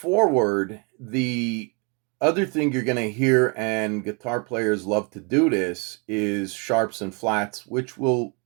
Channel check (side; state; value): left; quieter; 32.8 dB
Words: the other thing you're going to hear, and guitar players love to do this, is sharps and flats, which we'll